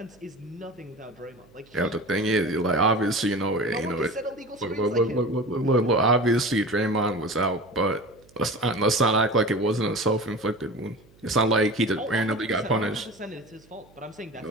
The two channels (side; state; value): right; noise; hum, 28 dB below the sound